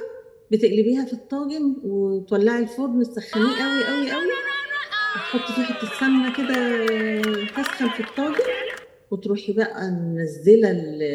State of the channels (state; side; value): identical; both; correlation 1.00